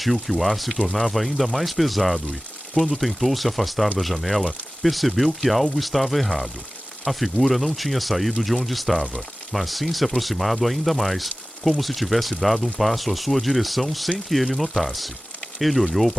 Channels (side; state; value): both; normal; correlation 0.97